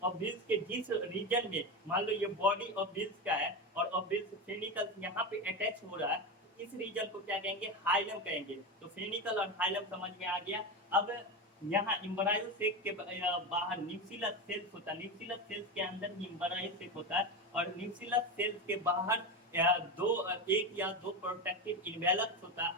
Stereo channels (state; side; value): normal; both; correlation 0.19